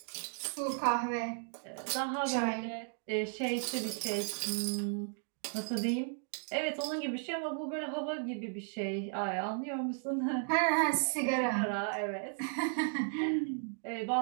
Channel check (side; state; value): left; silent; 54 dB below the other